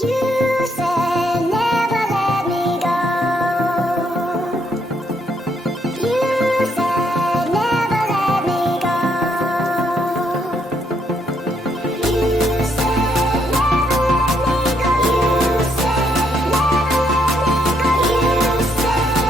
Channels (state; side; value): normal; both; correlation 0.74